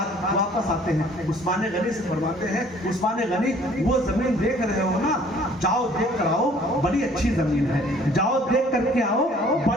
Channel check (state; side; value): normal; both; correlation 0.56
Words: वापस आते हैं, उस्मान गनी से फरमाते हैं उस्मान गनी वो जमीन देख रहे हो ना, जाओ देख कर आओ, बड़ी अच्छी जमीन है, जाओ देख करके आओ,